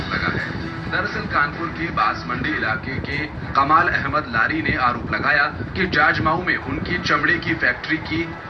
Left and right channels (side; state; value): both; identical; correlation 1.00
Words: लगा है। दरअसल कानपुर के बांसमंडी इलाके के कमाल अहमद लारी ने आरोप लगाया कि जाजमाऊ में उनकी चमड़े की फैक्ट्री की